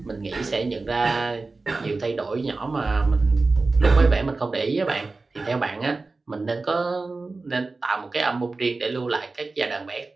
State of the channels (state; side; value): quieter; left; 3.6 dB